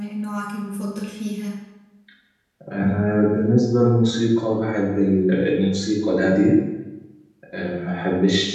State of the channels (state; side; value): identical; both; correlation 1.00